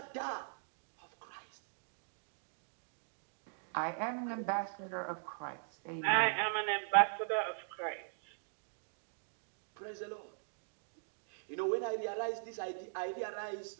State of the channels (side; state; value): left; silent; digital silence